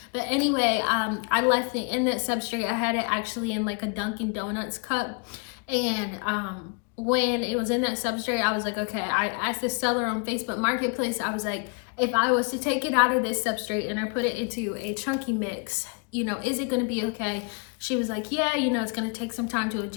But anyway, I left it in that substrate. I had it actually in like a Dunkin' Donuts cup, and when it was in that substrate, I was like, okay, I asked the seller on Facebook Marketplace, I was like, if I was to take it out of this substrate and I put it into a chunky mix, you know, is it gonna be okay? She was like, yeah, you know, it's gonna take some time to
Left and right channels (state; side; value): quieter; right; 36.6 dB